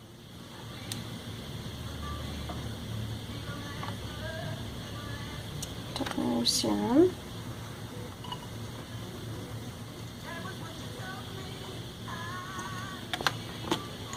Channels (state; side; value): identical; both; correlation 1.00